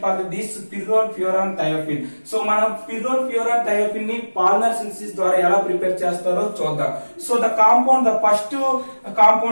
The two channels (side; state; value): both; inverted; correlation -1.00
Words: for this pyrrole, furan, thiophene. So మనం pyrrole, furan, thiophene ని Pol-NAR synthesis ద్వారా ఎలా prepare చేస్తారో చూద్దాం. So the compound, the first